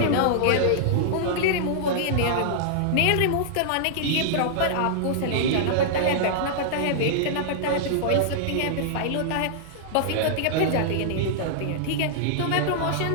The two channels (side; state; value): both; different; correlation -0.01